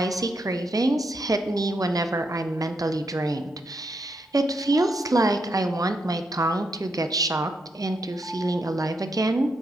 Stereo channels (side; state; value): both; normal; correlation 0.80